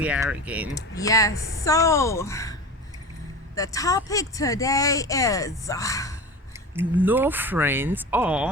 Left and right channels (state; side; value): normal; both; correlation 0.31